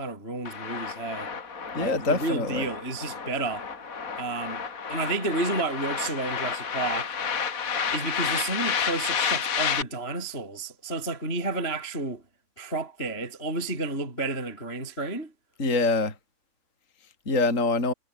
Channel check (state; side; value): late; right; 3.6 ms